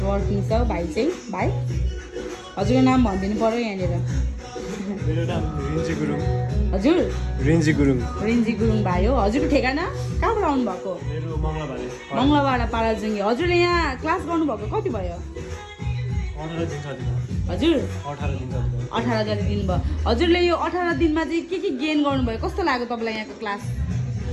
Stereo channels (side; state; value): both; identical; correlation 1.00